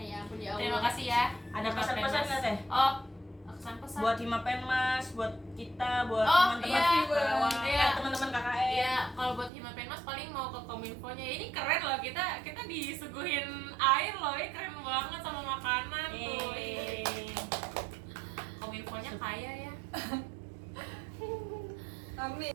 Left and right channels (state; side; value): drops out; left; at 9.5 s